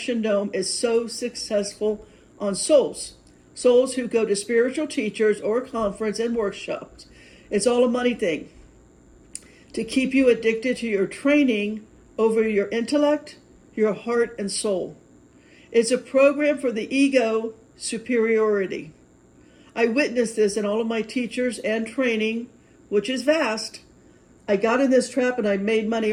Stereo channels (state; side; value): identical; both; correlation 1.00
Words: dome is so successful on souls. Souls who go to spiritual teachers or conference and workshops. It's all a money thing. To keep you addicted to your training over your intellect, your heart, and soul. It's a program for the ego superiority. I witnessed this in all of my teachers and training, which is vast. I got in this trap and I made money